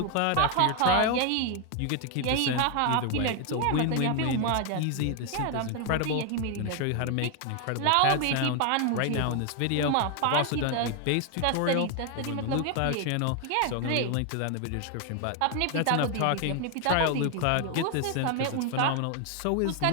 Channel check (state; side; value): different; both; correlation 0.01